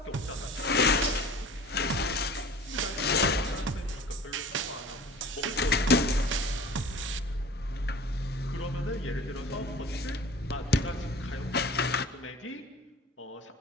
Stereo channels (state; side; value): normal; both; correlation 0.42